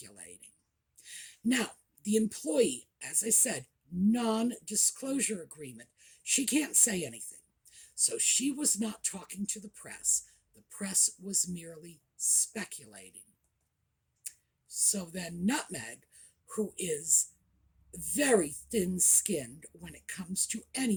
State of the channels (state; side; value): identical; both; correlation 1.00